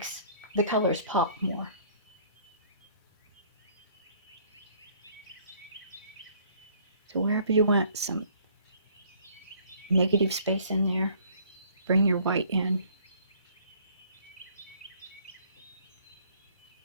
the colors pop more. So wherever you want some negative space in there, bring your white in.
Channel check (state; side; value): inverted; both; correlation -0.58